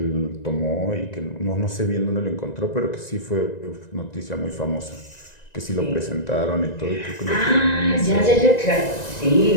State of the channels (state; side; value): late; right; 1.9 ms